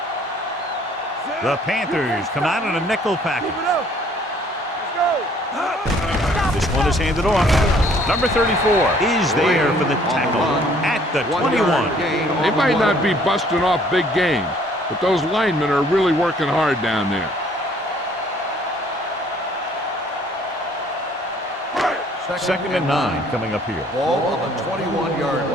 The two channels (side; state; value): both; normal; correlation 0.59